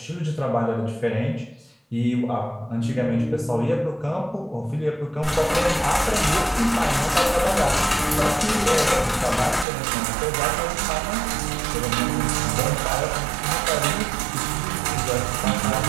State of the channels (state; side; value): drops out; left; at 9.7 s